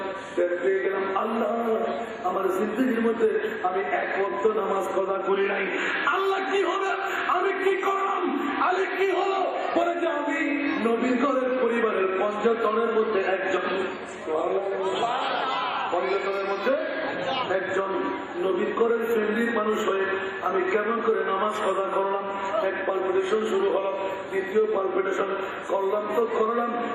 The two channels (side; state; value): both; identical; correlation 1.00